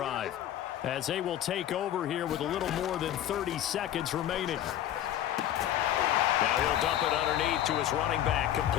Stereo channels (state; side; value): quieter; right; 11.8 dB